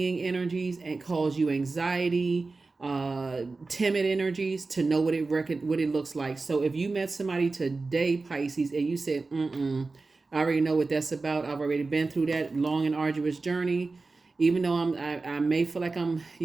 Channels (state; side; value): quieter; left; 3.8 dB